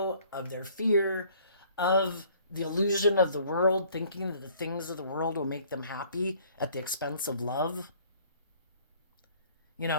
of their fear, of the illusion of the world, thinking that the things of the world will make them happy at the expense of love. You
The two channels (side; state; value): both; inverted; correlation -0.57